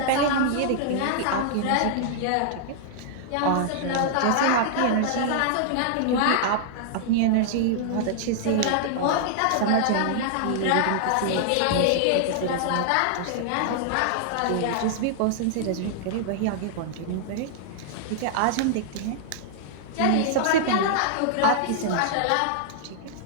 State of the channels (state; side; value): different; both; correlation -0.01